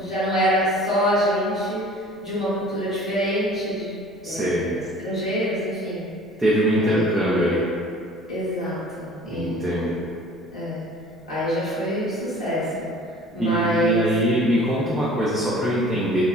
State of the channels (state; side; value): noise; left; rumble, 29 dB below the sound